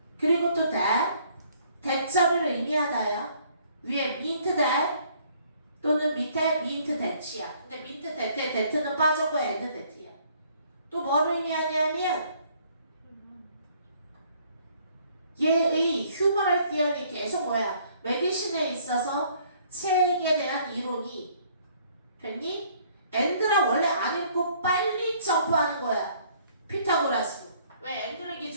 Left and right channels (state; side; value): inverted; both; correlation -0.61